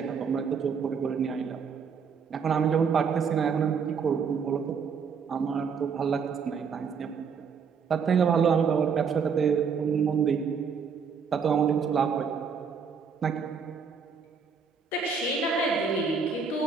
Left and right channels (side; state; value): left; quieter; 6.1 dB